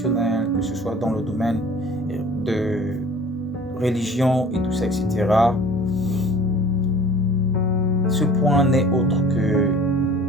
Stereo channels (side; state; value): both; normal; correlation 0.47